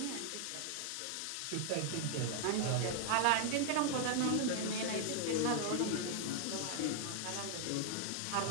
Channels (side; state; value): both; different; correlation 0.00